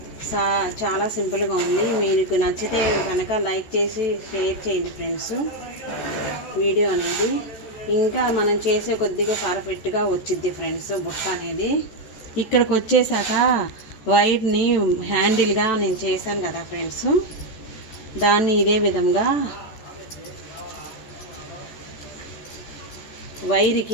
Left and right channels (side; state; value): right; late; 14 ms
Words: చాలా సింపుల్గా ఉంది. మీకు నచ్చితే కనుక లైక్ చేసి షేర్ చేయండి ఫ్రెండ్స్ వీడియో అనేది. ఇంకా మనం చేసే కొద్దిగా పర్ఫెక్ట్గా వచ్చిద్ది ఫ్రెండ్స్ బుట్ట అనేది. ఇక్కడికి వచ్చేసాక వైర్ని హ్యాండిల్గా నేను చేశాను కదా ఫ్రెండ్స్, దాన్ని ఇదే విధంగా